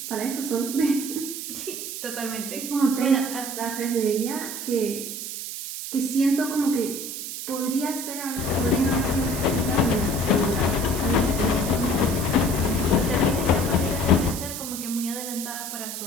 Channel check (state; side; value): noise; right; hiss, 7 dB below the sound